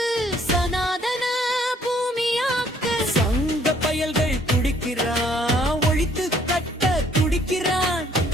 சனாதன பூமியாக்க சங்க பயல்கள் துடிக்கிறான். ஒழித்து கட்ட துடிக்கிறான்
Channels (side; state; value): both; normal; correlation 0.63